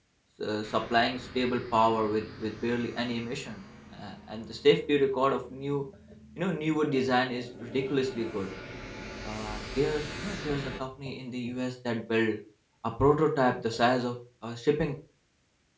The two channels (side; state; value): both; identical; correlation 1.00